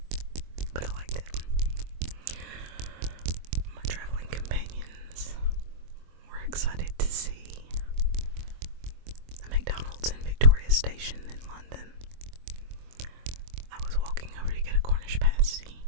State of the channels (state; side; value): late; left; 24 ms